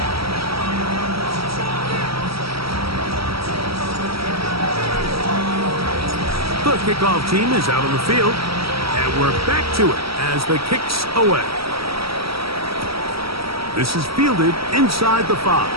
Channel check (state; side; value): late; left; 0.75 ms